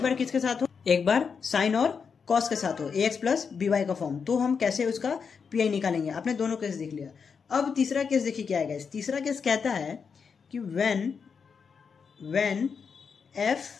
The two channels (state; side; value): quieter; right; 6.0 dB